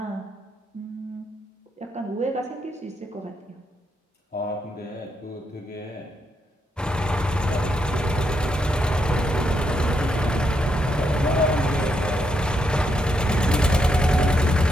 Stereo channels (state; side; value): normal; both; correlation 0.79